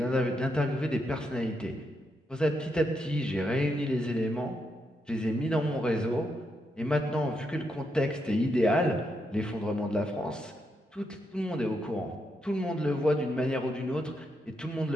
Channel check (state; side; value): normal; both; correlation 0.81